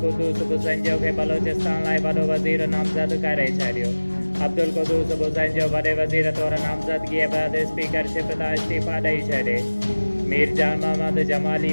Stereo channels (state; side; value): inverted; both; correlation -1.00